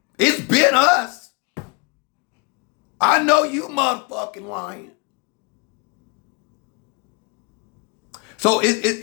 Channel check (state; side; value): quieter; right; 31.4 dB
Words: It's been us. I know you motherfucking lying. So